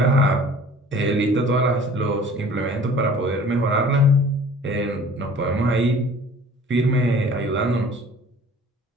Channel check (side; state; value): both; normal; correlation 0.48